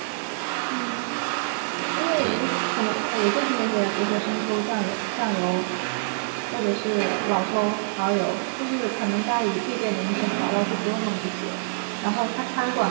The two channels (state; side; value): silent; left; digital silence